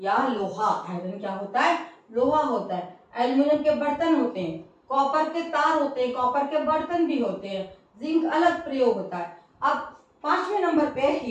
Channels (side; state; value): both; identical; correlation 1.00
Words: या लोहा, आयरन क्या होता है, लोहा होता है, एल्यूमिनियम के बर्तन होते हैं, कॉपर के तार होते हैं, कॉपर के बर्तन भी होते हैं, जिंक अलग प्रयोग होता है। अब पांचवें नंबर पे